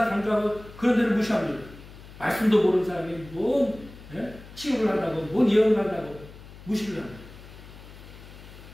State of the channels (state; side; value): noise; left; hum, 18 dB below the sound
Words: 강조하고 그런 데를 무시합니다. 말씀도 모르는 사람이 뭔 치유를 한다고 뭔 예언을 한다고 무시를 합니다.